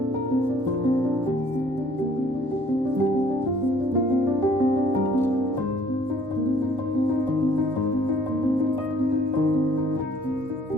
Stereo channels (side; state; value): both; normal; correlation 0.58